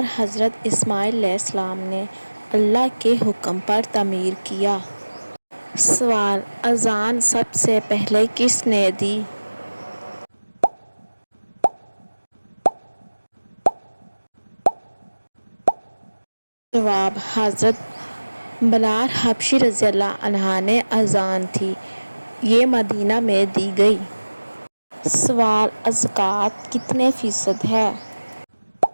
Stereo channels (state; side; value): inverted; both; correlation -1.00